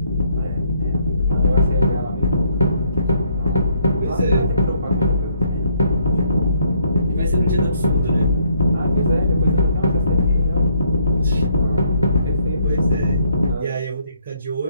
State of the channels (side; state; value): both; inverted; correlation -0.69